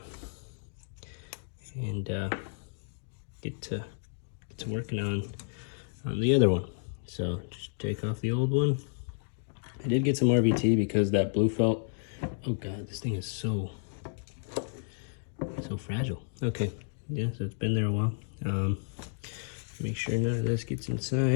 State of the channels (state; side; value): silent; right; digital silence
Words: and get to working on the other one. So just take off the old one. I did get some RVT because that blue felt. Oh God, this thing is so fragile. Okay, yeah, so it's been there a while. Make sure none of this gets